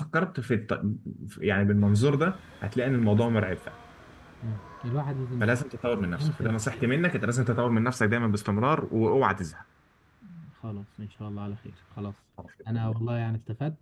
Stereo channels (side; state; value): both; identical; correlation 1.00